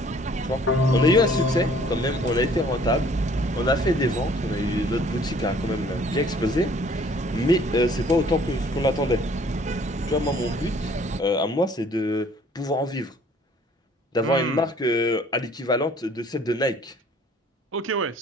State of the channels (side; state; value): both; normal; correlation 0.56